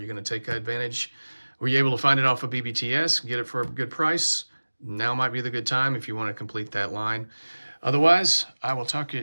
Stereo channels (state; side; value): inverted; both; correlation -1.00